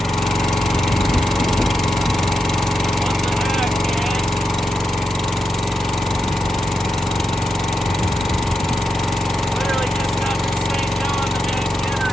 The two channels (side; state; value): both; normal; correlation 0.87